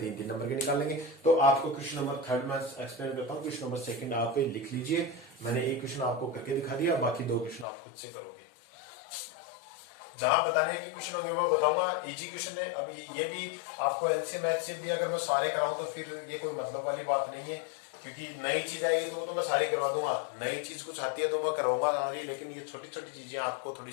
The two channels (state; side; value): drops out; right; at 7.7 s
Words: नंबर के निकाल लेंगे। तो आपको क्वेश्चन नंबर थर्ड में एक्सप्लेन करता हूँ, क्वेश्चन नंबर सेकंड आप लिख लीजिए, मैंने एक क्वेश्चन आपको करके दिखा दिया, बाकी 2 क्वेश्चन आप खुद से करोगे, जहां बताने की क्वेश्चन होंगे वो बताऊंगा, इजी क्वेश्चन है। अभी ये भी आपको एलसीएम एचसीएफ भी अगर मैं सारे कराऊं तो फिर ये कोई मतलब वाली बात नहीं है, क्योंकि नई चीज आएगी तो वो तो मैं सारी करवा दूंगा, नई चीज कुछ आती है तो मैं करवाऊंगा सारी, लेकिन ये छोटी छोटी चीजें आपको थोड़ी